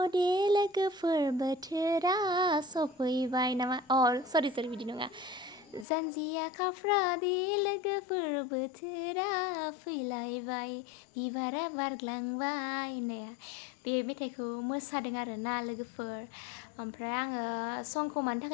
लोगोफोर बोथोरा सफैबाय नामा सरि बिदि नङा। जानजिया खाफ्रादे लोगोफोर बोथोरा फैलायबाय बिबारा बारग्लांबाय होननाया बे मेथाइखौ मोसादों आरोना लोगोफोर। ओमफ्राय आङो संखौ मानि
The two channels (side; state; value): right; drops out; at 5.9 s